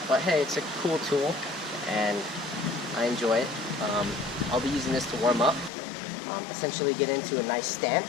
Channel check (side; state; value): right; drops out; at 5.7 s